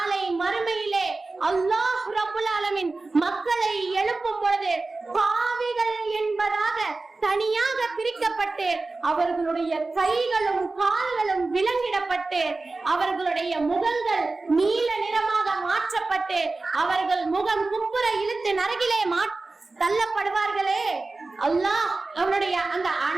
மறுமையிலே அல்லாஹ் ரப்புல் ஆலமீன் மக்களை எழுப்பும் பொழுது பாவிகள் என்பதாக தனியாக பிரிக்கப்பட்டு அவர்களுடைய கைகளும் கால்களும் விலங்கிடப்பட்டு அவர்களுடைய முகங்கள் நீல நிறமாக மாற்றப்பட்டு அவர்கள் முகம் குப்புற இழுத்து நரகிலே தள்ளப்படுவார்களே. அல்லாஹ் அவனுடைய அந்த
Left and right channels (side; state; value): left; quieter; 3.5 dB